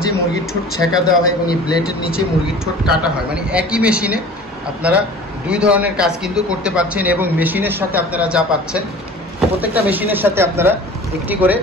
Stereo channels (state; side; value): normal; both; correlation 0.43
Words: মুরগির ঠোঁট ছেঁকা দেওয়া হয় এবং এই ব্লেডের নিচে মুরগির ঠোঁট কাটা হয়, মানে একই মেশিনে আপনারা দুই ধরনের কাজ কিন্তু করতে পারছেন। এবং মেশিনের সাথে আপনারা যা পাচ্ছেন, প্রত্যেকটা মেশিনের সাথে আপনারা একটি করে